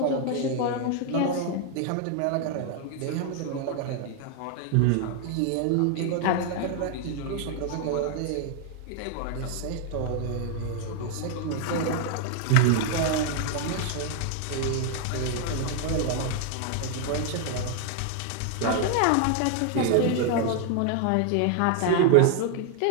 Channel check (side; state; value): both; different; correlation 0.00